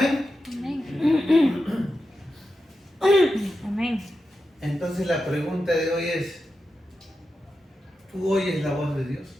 Amén. Amén. Entonces la pregunta de hoy es, ¿tú oyes la voz de Dios?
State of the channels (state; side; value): normal; both; correlation 0.90